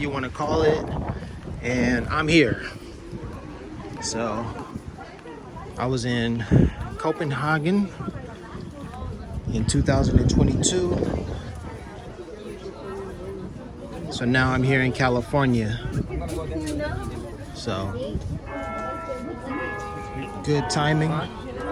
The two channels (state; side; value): identical; both; correlation 1.00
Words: want to call it. And I'm here. So I was in Copenhagen in 2022. So now I'm here in California. So good timing.